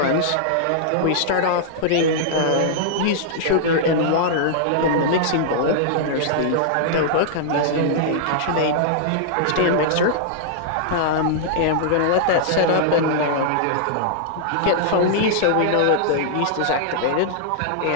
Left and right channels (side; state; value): both; different; correlation -0.01